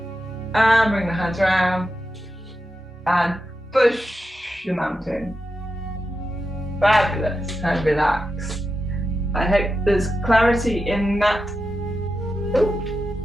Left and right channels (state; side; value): normal; both; correlation 0.89